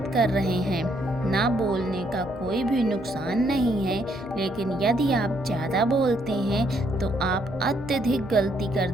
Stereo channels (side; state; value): left; noise; hum, 21 dB below the sound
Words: कर रहे हैं। ना बोलने का कोई भी नुकसान नहीं है, लेकिन यदि आप ज़्यादा बोलते हैं तो आप अत्यधिक गलती कर